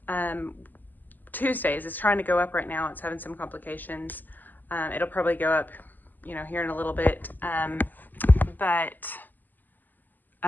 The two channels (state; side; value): late; right; 0.086 ms